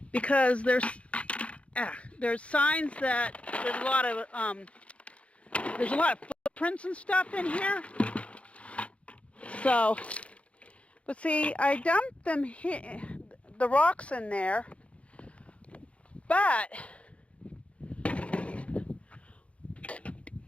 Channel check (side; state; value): right; late; 0.062 ms